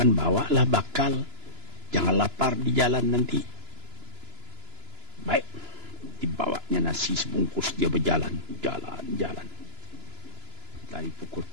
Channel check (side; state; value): left; late; 2.9 ms